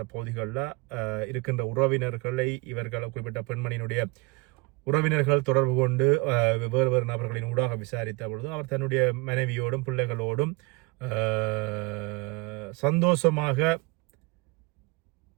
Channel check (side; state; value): left; quieter; 25.0 dB